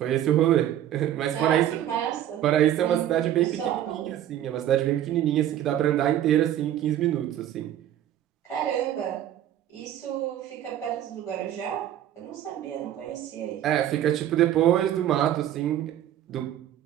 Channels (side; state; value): left; quieter; 11.6 dB